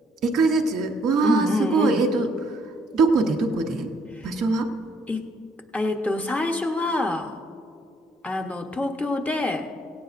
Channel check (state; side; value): normal; both; correlation 0.67